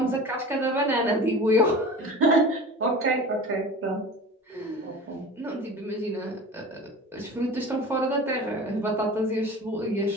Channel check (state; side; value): normal; both; correlation 0.36